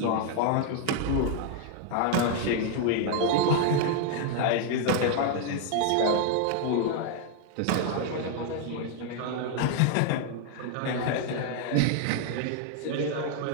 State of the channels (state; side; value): different; both; correlation 0.00